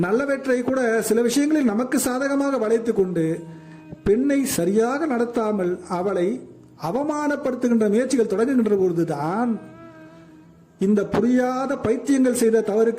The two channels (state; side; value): identical; both; correlation 1.00